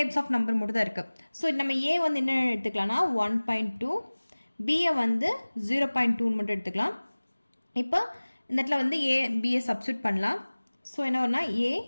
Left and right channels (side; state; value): both; inverted; correlation -1.00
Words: ஆஃப் நம்பர் மட்டும் தான் இருக்குது. ஸோ நம்ம ஏ வந்து என்ன எடுத்துக்கலாம்னா 1.2, பியை வந்து 0.2 மட்டும் எடுத்துக்கலாம். இப்போ இந்த இடத்துல வந்து ஏ பியை சப்ஸ்டியூட் பண்ணலாம். ஸோ என்ன வரும்னா A